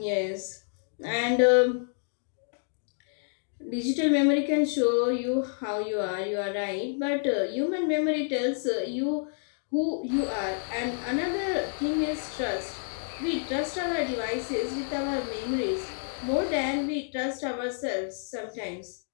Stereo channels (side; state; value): right; silent; digital silence